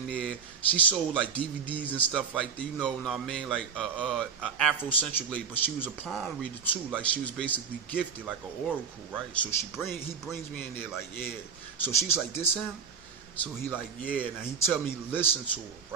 there. She sold, like, DVDs and stuff like that. You know what I mean? Like a Afrocentric lady, but she was a palm reader too. Like, she was basically gifted, like an oracle, right? So he brings me in there, like, yeah. So she's like, this him? So he like, yeah. Now he tell me listen to her,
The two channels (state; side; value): quieter; left; 6.5 dB